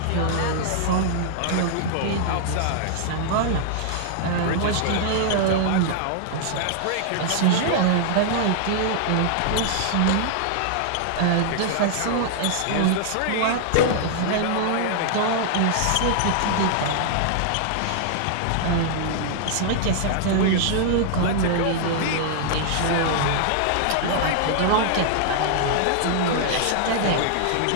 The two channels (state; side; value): different; both; correlation -0.01